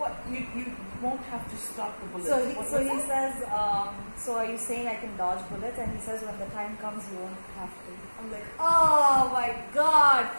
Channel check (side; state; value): both; inverted; correlation -1.00